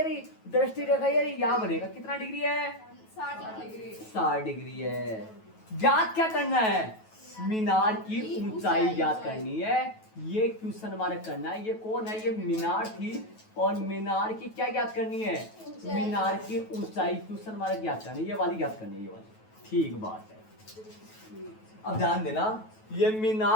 रही, दृष्टि रेखा ये रही, यहाँ बनेगा। कितना डिग्री है? 60 डिग्री है। ज्ञात क्या करना है? मीनार की ऊंचाई ज्ञात करनी है। ये क्वेश्चन मार्क करना है। ये कौन है? ये मीनार थी, और मीनार की क्या ज्ञात करनी है? मीनार की ऊंचाई क्वेश्चन मार्क ज्ञात करनी है। ये वाली ज्ञात करनी है, ये वाली। ठीक बात है। अब ध्यान देना, ये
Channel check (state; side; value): late; right; 9.2 ms